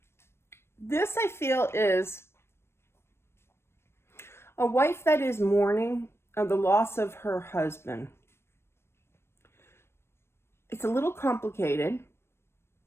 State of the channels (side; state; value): right; late; 0.12 ms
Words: This, I feel, is a wife that is mourning the loss of her husband. It's a little complicated,